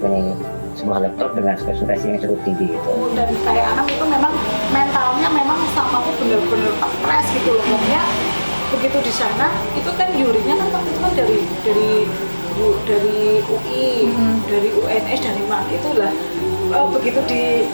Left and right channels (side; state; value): both; inverted; correlation -1.00